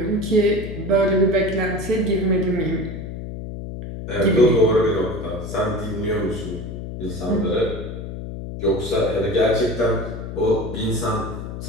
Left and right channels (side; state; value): left; noise; hum, 8 dB below the sound